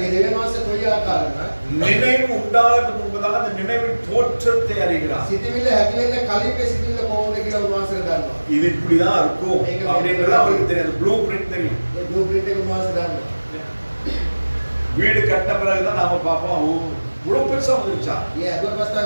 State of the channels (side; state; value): both; inverted; correlation -1.00